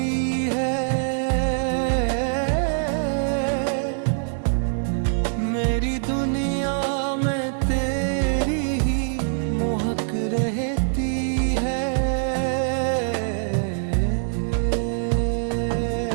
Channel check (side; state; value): left; silent; digital silence